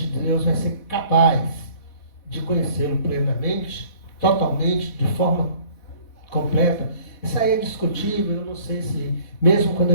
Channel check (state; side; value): late; right; 4.1 ms